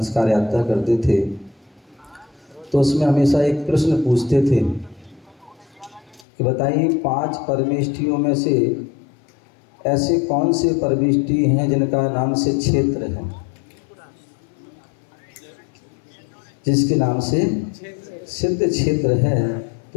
यात्रा करते थे, तो उसमें हमेशा एक प्रश्न पूछते थे कि बताइए 5 परमेष्ठियों में से ऐसे कौन से परमेष्ठि हैं जिनका नाम से क्षेत्र है, जिसके नाम से सिद्ध क्षेत्र है,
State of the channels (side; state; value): right; drops out; at 6.2 s